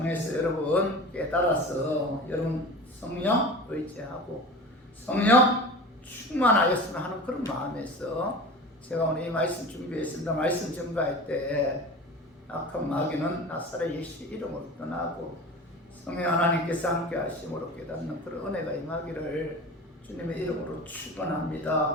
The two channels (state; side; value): normal; both; correlation 0.35